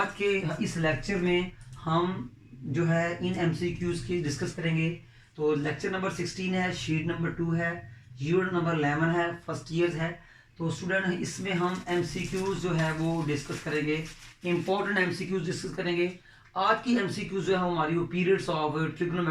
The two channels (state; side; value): identical; both; correlation 1.00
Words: के इस लेक्चर में हम जो है इन MCQs की डिस्कस करेंगे। तो लेक्चर नंबर 16 है, शीट नंबर 2 है, यूनिट नंबर 11 है, फर्स्ट ईयर्स है। तो स्टूडेंट इसमें हम MCQs जो है वो डिस्कस करेंगे, इंपॉर्टेंट MCQs डिस्कस करेंगे। आज की MCQ जो है हमारी वो पीरियड्स ऑफ